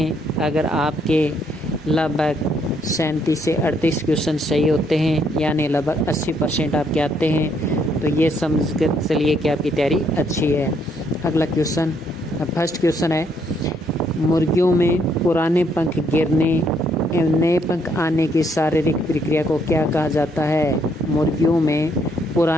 अगर आपके लगभग 37 से 38 क्वेश्चन सही होते हैं, यानी लगभग 80% आपके आते हैं, तो ये समझ कर चलिए कि आपकी तैयारी अच्छी है। अगला क्वेश्चन, फर्स्ट क्वेश्चन है, मुर्गियों में पुराने पंख गिरने एवं नए पंख आने की शारीरिक प्रक्रिया को क्या कहा जाता है? मुर्गियों में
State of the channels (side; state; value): both; normal; correlation 0.71